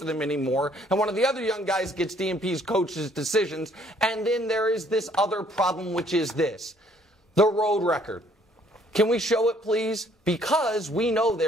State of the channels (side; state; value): both; normal; correlation 0.63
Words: them anymore. And one of the other young guys gets DMP's coach's decisions. And then there is this other problem, which is this. The road record. Can we show it, please? Because we know